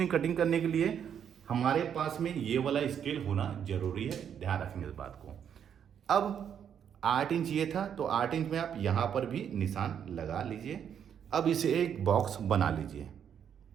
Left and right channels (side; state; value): left; quieter; 8.5 dB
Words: कटिंग करने के लिए हमारे पास में ये वाला स्केल होना जरूरी है, ध्यान रखेंगे इस बात को। अब 8 इंच ये था, तो 8 इंच में आप यहाँ पर भी निशान लगा लीजिए। अब इसे एक बॉक्स बना लीजिए।